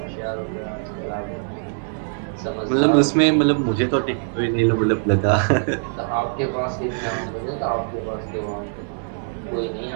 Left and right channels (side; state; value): left; silent; 63 dB below the other